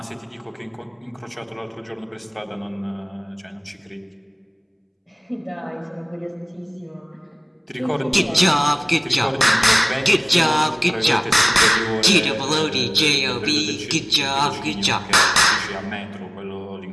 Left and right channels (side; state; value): both; identical; correlation 1.00